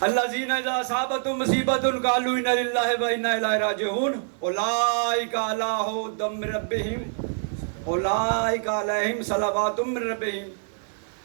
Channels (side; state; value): left; silent; digital silence